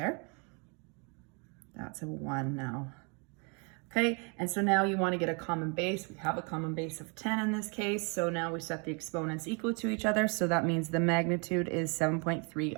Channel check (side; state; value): left; quieter; 34.1 dB